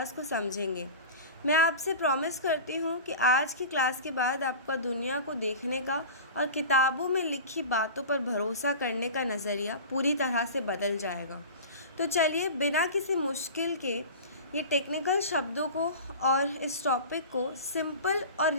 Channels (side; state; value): both; inverted; correlation -0.33